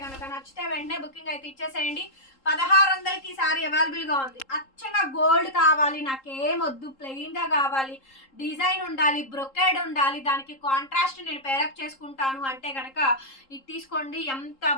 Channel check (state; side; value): late; right; 3.8 ms